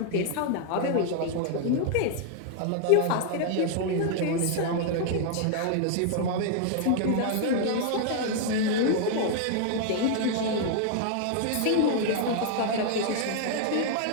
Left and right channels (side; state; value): both; different; correlation 0.00